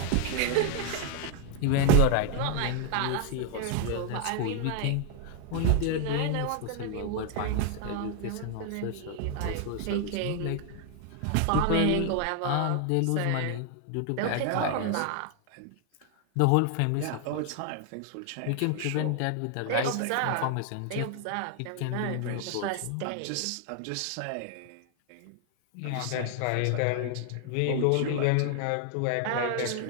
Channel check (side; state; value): both; different; correlation 0.00